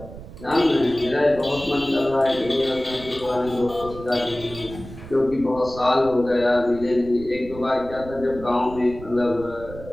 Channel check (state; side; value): noise; right; rumble, 15 dB below the sound